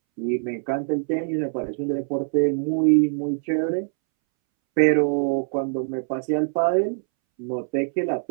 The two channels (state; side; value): silent; left; 63 dB below the other